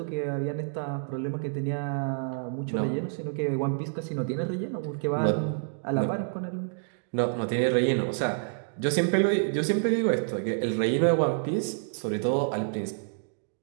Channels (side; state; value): left; silent; digital silence